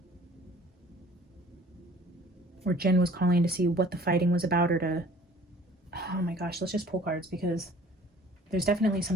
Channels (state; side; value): normal; both; correlation 0.51